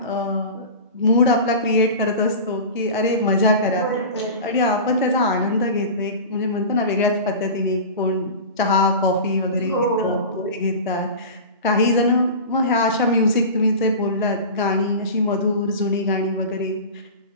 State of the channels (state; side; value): inverted; both; correlation -0.31